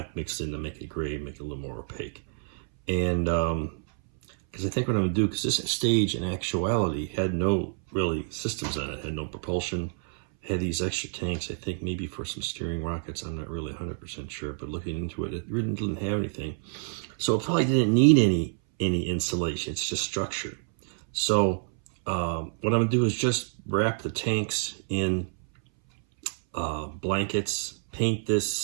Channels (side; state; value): left; silent; 59 dB below the other